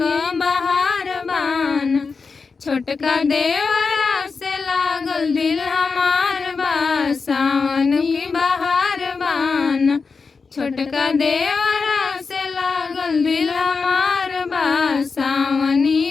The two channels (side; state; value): right; quieter; 4.8 dB